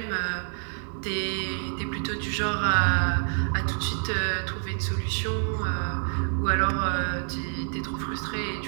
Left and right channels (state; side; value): silent; left; 59 dB below the other